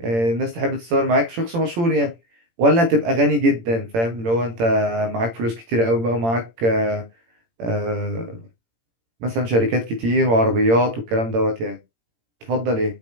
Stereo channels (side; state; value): left; late; 18 ms